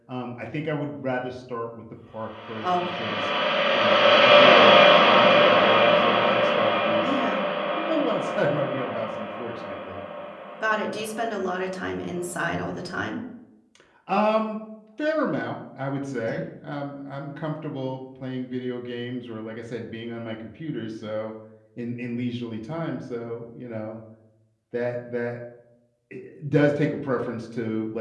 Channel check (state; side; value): identical; both; correlation 1.00